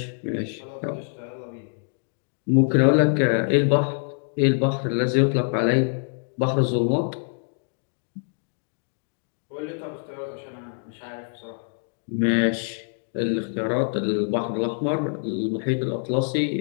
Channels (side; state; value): right; silent; 62 dB below the other